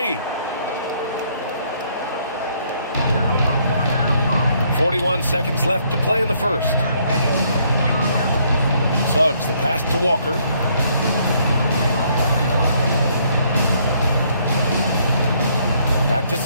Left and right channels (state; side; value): inverted; both; correlation -0.68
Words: 41 seconds left to play in the first. Suggs, the pass to Walker. Back to